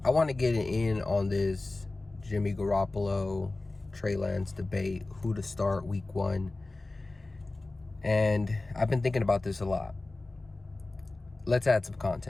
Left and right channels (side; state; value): right; quieter; 3.1 dB